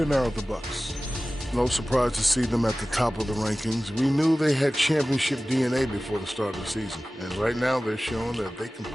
now at the Bucks. No surprise to see them at the top of the rankings. We knew they had championship DNA before the start of the season. And right now they're showing that they can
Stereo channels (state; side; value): normal; both; correlation 0.97